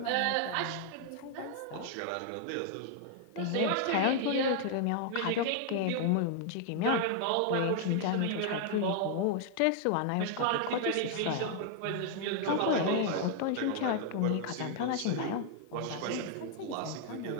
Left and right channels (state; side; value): different; both; correlation 0.00